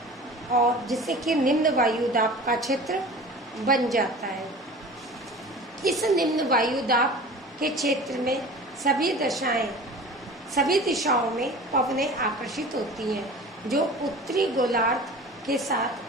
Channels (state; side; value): normal; both; correlation 0.39